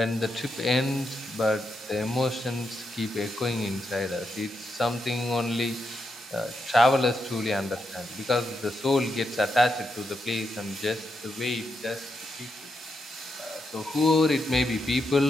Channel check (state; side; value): normal; both; correlation 0.84